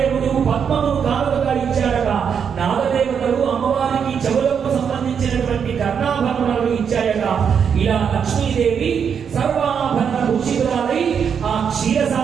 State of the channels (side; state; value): left; quieter; 7.2 dB